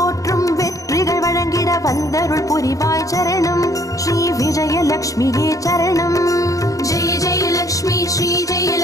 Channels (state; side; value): late; right; 0.16 ms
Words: வெற்றிகள் வழங்கிட வந்தருள் புரிவாய் சரணம் ஸ்ரீ விஜயலக்ஷ்மியே சரணம் जय जय लक्ष्मी श्री जय